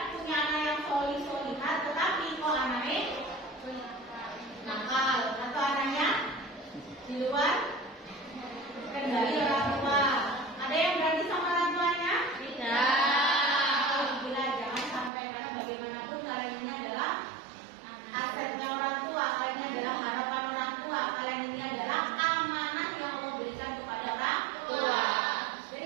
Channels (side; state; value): left; drops out; at 15.1 s